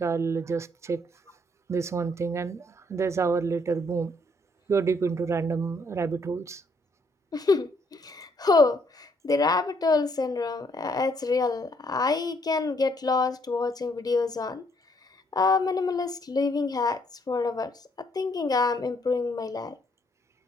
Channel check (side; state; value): both; normal; correlation 0.69